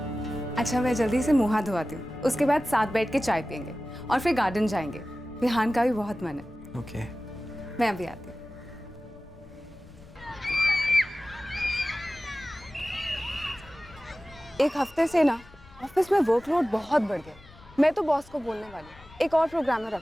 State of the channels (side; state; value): left; noise; rumble, 22 dB below the sound